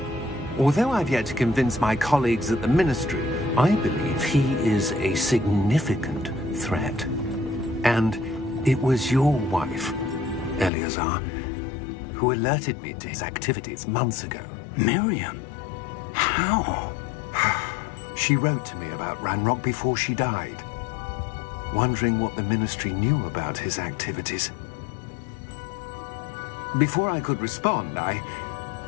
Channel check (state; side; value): drops out; right; at 10.7 s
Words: Although I've yet to convince my colleagues at the Ministry, I believe he is a significant threat. And it was your wife, Eleazar, who alerted me to his activities months ago. Miriam? How? She wrote to me about Ranrock before she died, wondering what the Ministry knew about his activities. Before I could respond, I